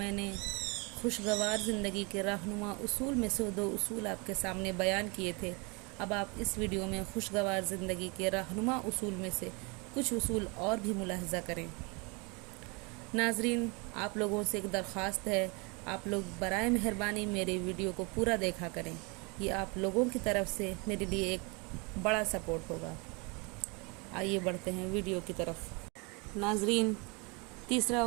نے خوشگوار زندگی کے رہنما اصول میں سے 2 اصول آپ کے سامنے بیان کیے تھے، اب آپ اس ویڈیو میں خوشگوار زندگی کے رہنما اصول میں سے کچھ اصول اور بھی ملاحظہ کریں۔ ناظرین، آپ لوگوں سے ایک درخواست ہے، آپ لوگ برائے مہربانی میرے ویڈیو کو پورا دیکھا کریں، یہ آپ لوگوں کی طرف سے میرے لیے ایک بڑا سپورٹ ہوگا۔ آئیے بڑھتے ہیں ویڈیو کی طرف۔ ناظرین، تیسرا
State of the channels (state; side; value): quieter; left; 29.8 dB